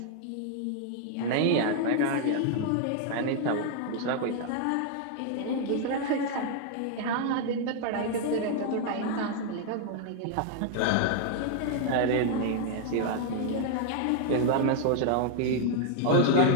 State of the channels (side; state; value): both; different; correlation 0.00